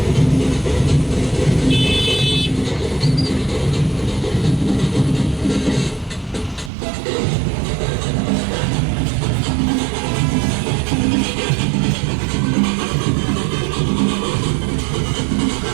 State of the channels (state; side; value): drops out; left; at 6.7 s